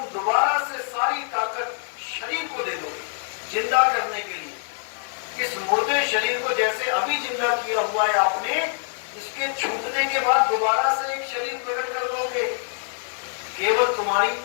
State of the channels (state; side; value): silent; right; 62 dB below the other